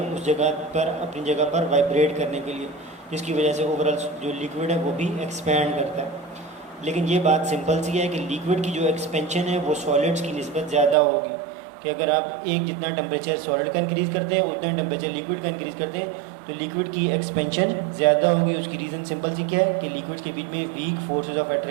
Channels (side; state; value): left; drops out; at 11.0 s